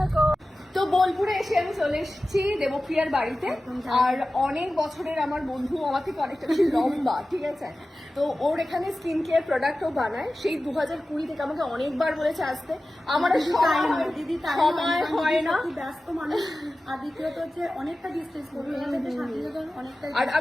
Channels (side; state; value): both; normal; correlation 0.95